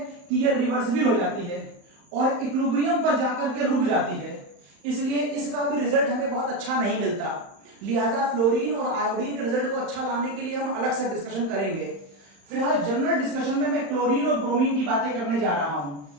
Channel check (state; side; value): late; left; 35 ms